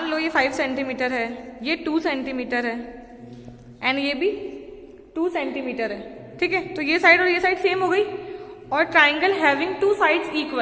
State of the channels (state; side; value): identical; both; correlation 1.00